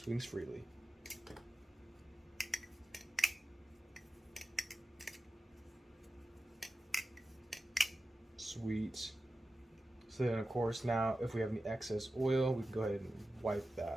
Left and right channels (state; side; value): normal; both; correlation 0.94